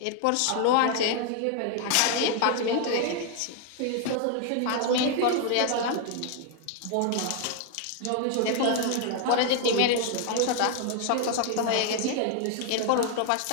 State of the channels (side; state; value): both; different; correlation 0.00